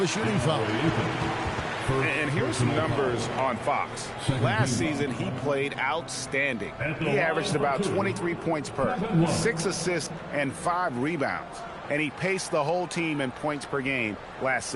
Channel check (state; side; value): identical; both; correlation 1.00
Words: shooting foul. And here's some numbers on Fox. Last season, he played outstanding. He averaged about 23 points per, 6 assists, and 5 rebounds. And he paced the whole team in points per game last